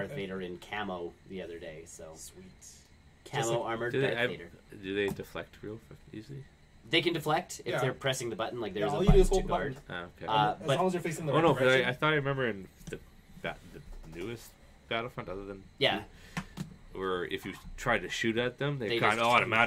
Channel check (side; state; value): both; identical; correlation 1.00